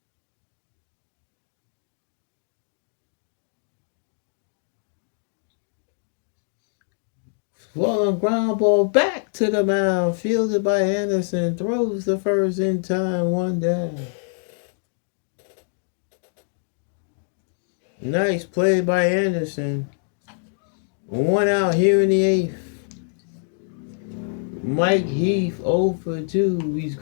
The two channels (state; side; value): silent; right; digital silence